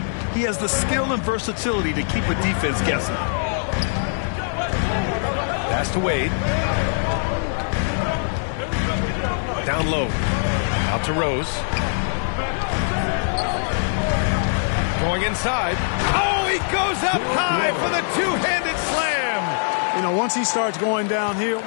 He has the skill and versatility to keep a defense guessing. Pass to Wade. Down low. Out to Rose. Going inside. Oh, he goes up high for the two-handed slam. You know, once he starts going downhill,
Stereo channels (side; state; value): right; silent; digital silence